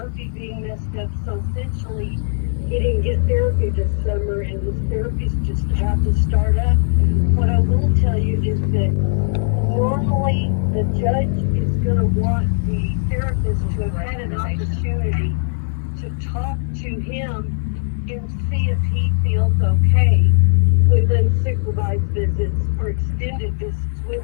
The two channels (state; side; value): silent; right; digital silence